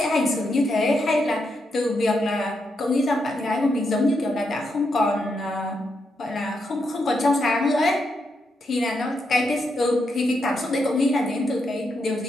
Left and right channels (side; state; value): both; normal; correlation 0.82